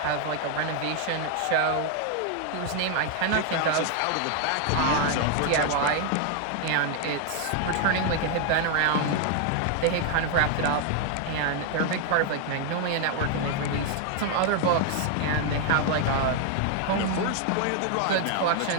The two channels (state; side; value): different; both; correlation 0.00